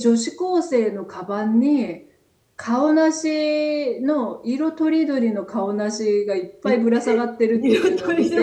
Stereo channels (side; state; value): both; identical; correlation 1.00